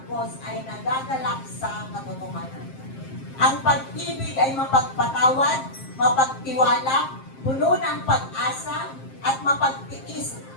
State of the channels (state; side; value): late; right; 7.5 ms